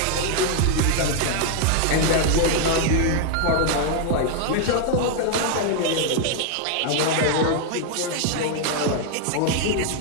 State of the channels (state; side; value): different; both; correlation 0.00